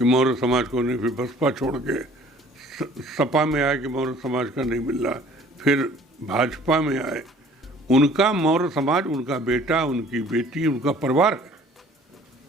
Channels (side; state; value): both; normal; correlation 0.53